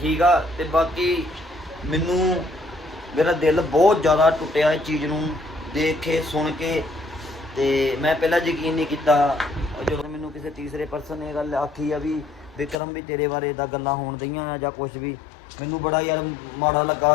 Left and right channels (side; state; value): right; drops out; at 12.8 s